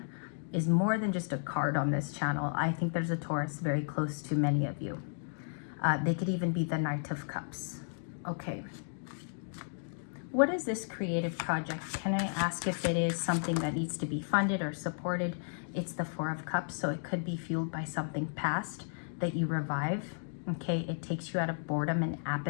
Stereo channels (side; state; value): right; silent; digital silence